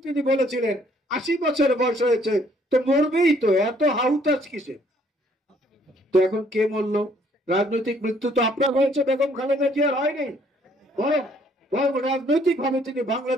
তিনি বলেছিলেন 80 বছর বয়স হয়েছে, তো মরবেই তো, এত হাউতাস কিসে? তো এখন কে মরল? রাজনৈতিক মৃত্যু তো আপনার হয়েছে, বেগম খালেদা জিয়ার হয়নি। বরং রাজনৈতিক ভাবে তিনি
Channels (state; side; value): normal; both; correlation 0.63